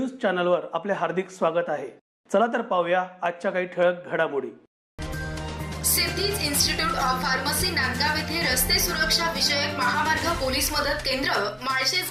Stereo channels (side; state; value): both; identical; correlation 1.00